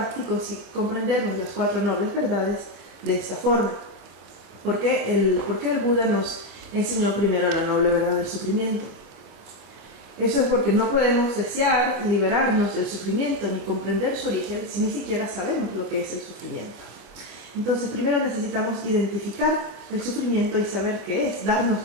si comprendemos las 4 nobles verdades de esta forma. ¿Por qué el Buda nos enseñó primero la noble verdad del sufrimiento? Eso es porque no podemos desear liberarnos del sufrimiento ni comprender su origen si ni siquiera sabemos lo que es el sufrimiento. Entonces, primero necesitamos identificar el sufrimiento y saber qué es, darnos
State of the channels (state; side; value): late; left; 25 ms